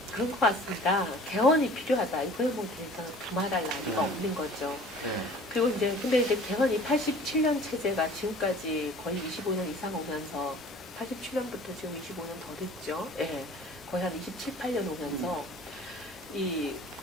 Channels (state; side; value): normal; both; correlation 0.47